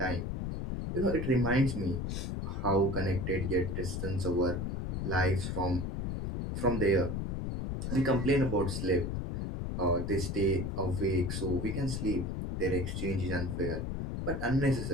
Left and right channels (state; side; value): noise; left; rumble, 2 dB below the sound